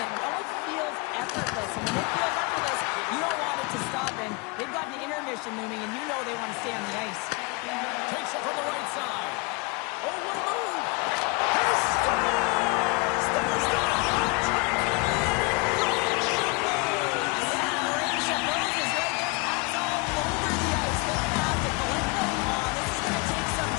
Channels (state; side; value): quieter; right; 28.6 dB